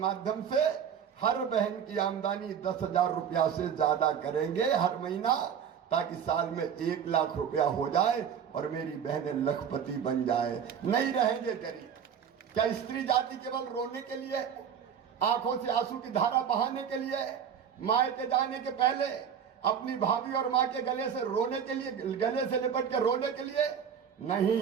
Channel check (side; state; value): left; quieter; 8.0 dB